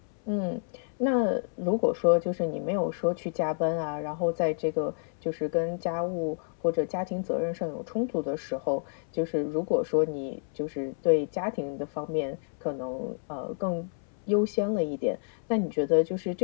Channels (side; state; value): right; silent; 58 dB below the other